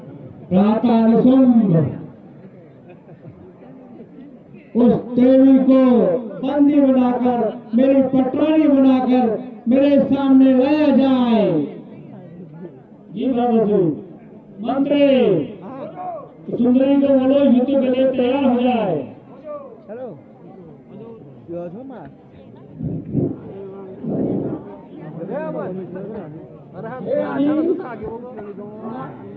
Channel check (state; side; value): identical; both; correlation 1.00